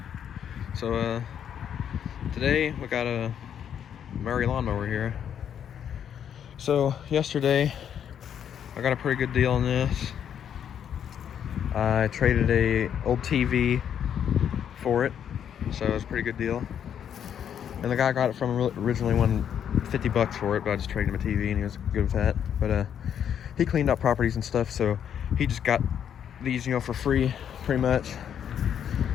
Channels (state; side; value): quieter; right; 8.9 dB